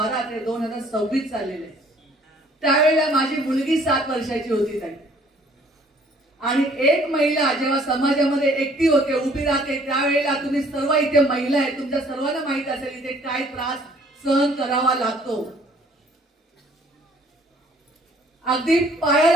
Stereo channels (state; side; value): normal; both; correlation 0.58